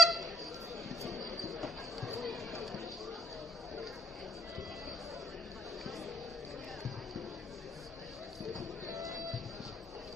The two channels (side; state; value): both; normal; correlation 0.66